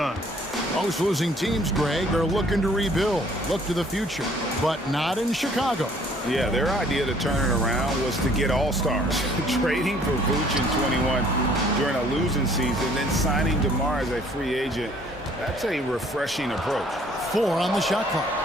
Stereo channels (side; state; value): both; normal; correlation 0.58